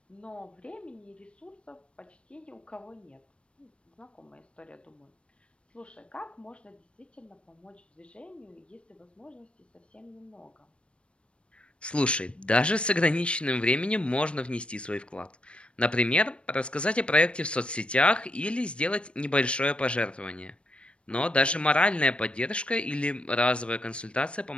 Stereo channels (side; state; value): right; late; 0.058 ms